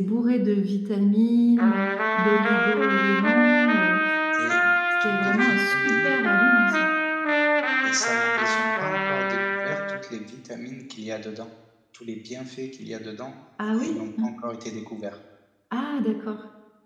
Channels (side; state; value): both; identical; correlation 1.00